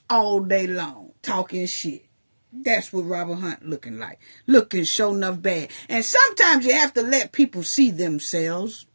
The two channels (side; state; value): both; inverted; correlation -1.00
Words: all day long, talking shit. That's what Robert Hunt looking like. Looking sure enough bad. And sometimes you have to let people see themselves